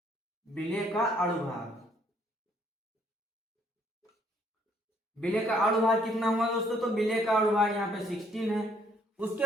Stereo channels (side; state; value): both; normal; correlation 0.65